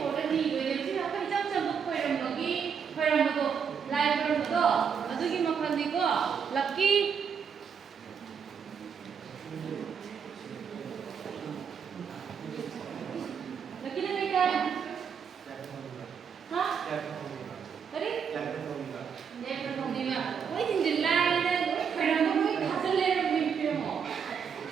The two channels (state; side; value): quieter; left; 6.9 dB